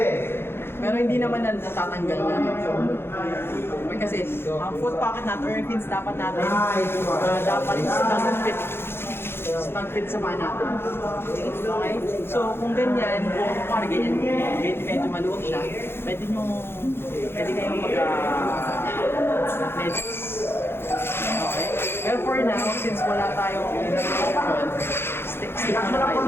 Pero hindi naman natatanggal na. Okay, kasi ang foot pocket natin or yung pins dapat natin, dapat snug fit sa paa natin. Okay? So kung ganyan, kung parang ganyan, medyo maluwag siya, pwede kayong mag-medyas. Okay? Pero for now, since wala tayong option, stick muna tayo Ano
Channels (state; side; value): late; right; 0.11 ms